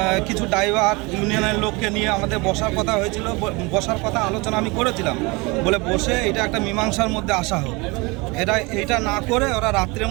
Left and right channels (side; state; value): left; quieter; 26.1 dB